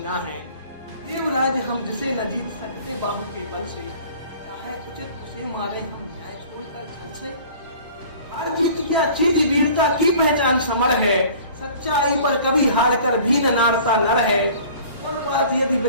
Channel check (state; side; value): inverted; both; correlation -0.47